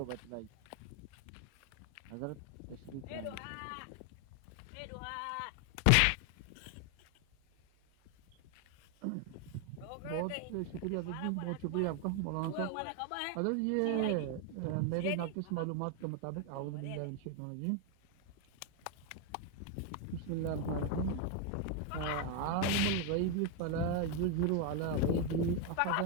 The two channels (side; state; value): both; different; correlation 0.01